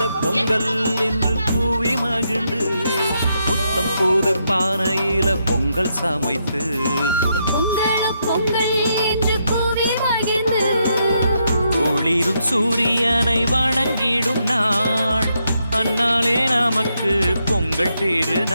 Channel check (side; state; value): both; inverted; correlation -0.79